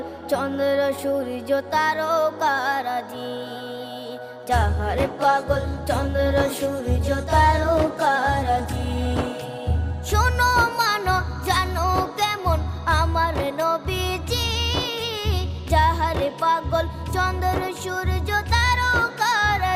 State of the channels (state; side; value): identical; both; correlation 1.00